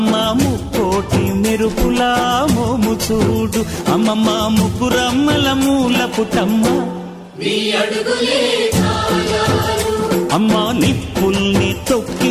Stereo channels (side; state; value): both; identical; correlation 1.00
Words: ముక్కోటి మెరుపులా మోము చూడు, అమ్మమ్మ ముగ్గురమ్మల మూల పుటమ్మ అమ్మా నిప్పుల్ని